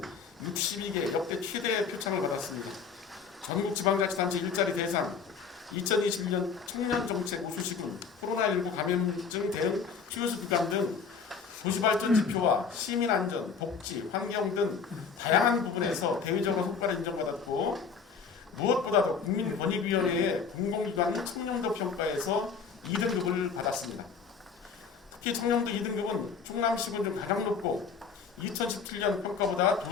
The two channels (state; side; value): quieter; right; 5.8 dB